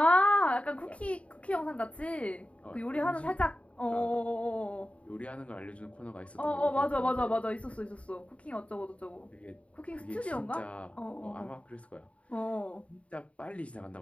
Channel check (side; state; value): right; late; 0.064 ms